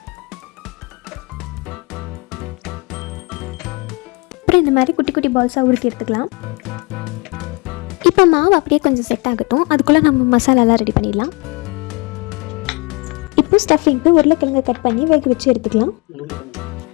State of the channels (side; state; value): right; quieter; 28.7 dB